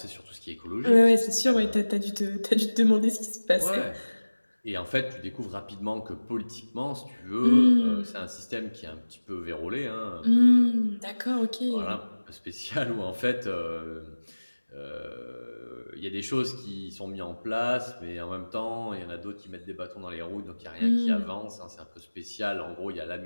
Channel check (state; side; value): inverted; both; correlation -1.00